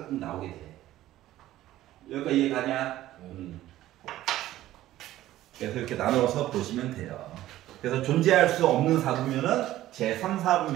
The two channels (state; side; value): quieter; left; 14.5 dB